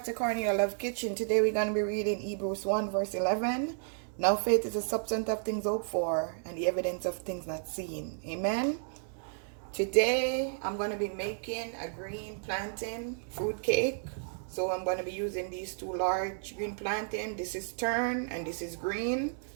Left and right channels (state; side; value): silent; left; digital silence